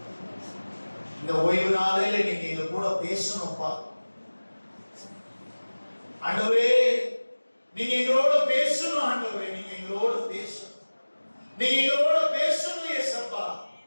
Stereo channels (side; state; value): both; inverted; correlation -1.00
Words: இந்த ஓய்வு நாளிலே நீங்க எங்க கூட பேசணும்ப்பா. ஆண்டவரே, நீங்க எங்களோட பேசணும். ஆண்டவரே, நீங்க எங்களோட பேசணும். நீங்க எங்களோட பேசணும் ஏசப்பா.